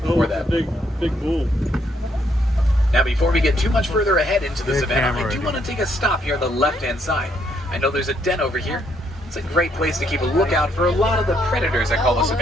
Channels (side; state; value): both; normal; correlation 0.72